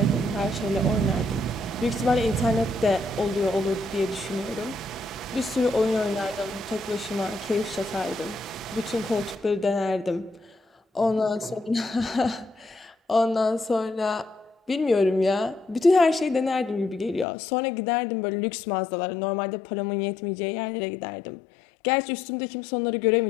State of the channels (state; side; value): drops out; right; at 17.2 s